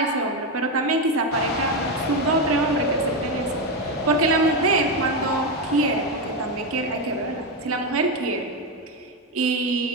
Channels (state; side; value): normal; both; correlation 0.09